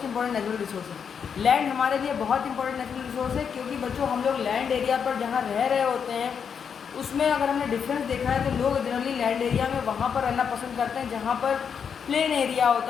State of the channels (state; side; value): quieter; right; 7.0 dB